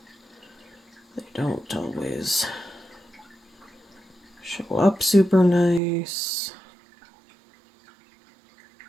They don't always show up super nice.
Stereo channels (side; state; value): left; drops out; at 5.8 s